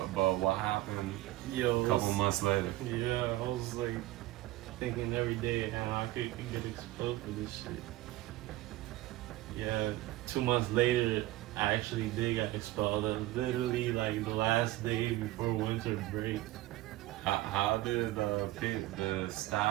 what happened a couple months later? Yeah, I was like thinking every day how I could get expelled for this shit. Yeah, 2 months later, I actually did get expelled. Literally like the last day before winter break. How did the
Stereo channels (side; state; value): left; quieter; 17.0 dB